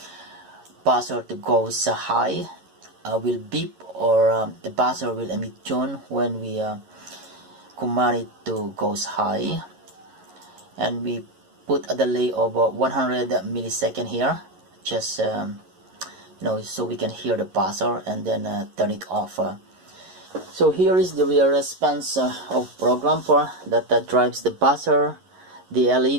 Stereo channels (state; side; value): late; left; 11 ms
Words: buzzer to go high, will beep, or the buzzer will emit tone when we command it to goes high. And we put a delay of 100 millisecond here, just so we can hear the buzzer and then turn it off. So here is the real response of program that drives the buzzer, the